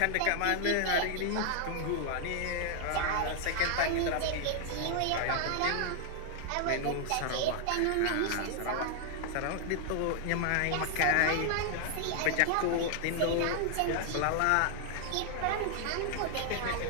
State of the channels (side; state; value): both; different; correlation 0.00